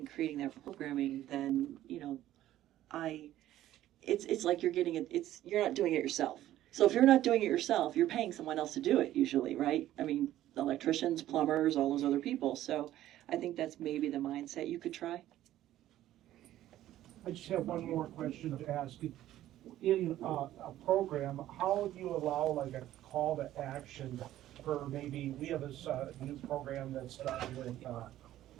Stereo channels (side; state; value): left; quieter; 13.5 dB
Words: creating that programming, then it's like you're getting it. You're not doing it yourself. So if you're not doing it yourself, you're paying someone else to do it usually, right? I mean, electricians, plumbers, all those other people. So I think that's maybe the mindset you could try. I just have one more question to ask. In a program, how do you allow like a call to action for maybe, we have this new program that's done with